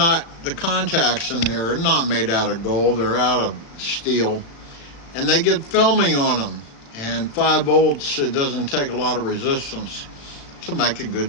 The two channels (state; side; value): late; right; 36 ms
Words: the contacts in there are not made out of gold, they're out of steel, and they get filmy on them, and 5 volts, it doesn't take a lot of resistance to make a